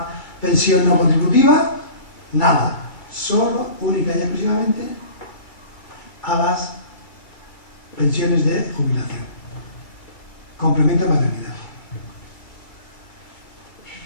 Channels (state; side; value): late; right; 2.2 ms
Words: pensión no contributiva, nada. Solo, única y exclusivamente, a las pensiones de jubilación. Complemento de maternidad.